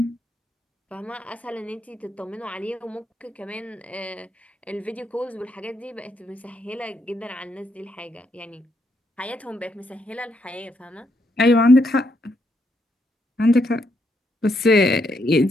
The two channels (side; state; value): both; normal; correlation 0.77